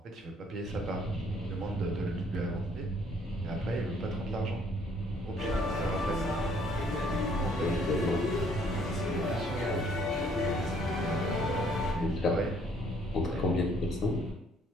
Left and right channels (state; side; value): normal; both; correlation 0.64